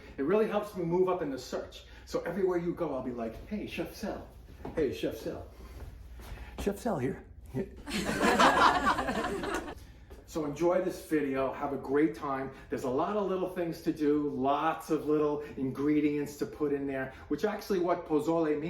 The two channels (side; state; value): both; identical; correlation 1.00